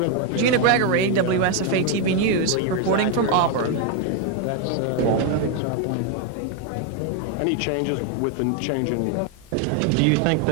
Gina Gregory, WSFA TV News, reporting from Auburn. Any changes with the change in... Do you think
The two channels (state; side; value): normal; both; correlation 0.01